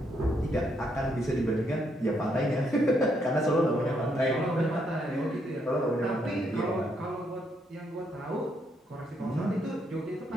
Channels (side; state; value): both; normal; correlation 0.75